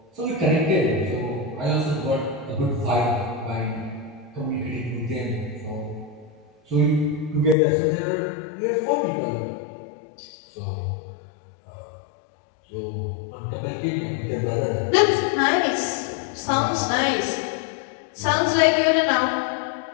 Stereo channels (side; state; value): right; drops out; at 7.6 s